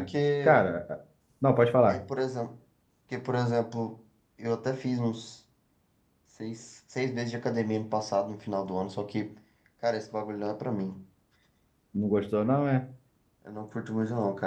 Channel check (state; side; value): identical; both; correlation 1.00